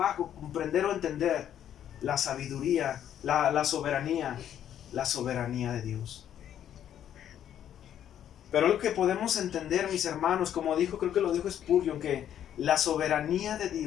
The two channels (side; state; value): right; quieter; 10.3 dB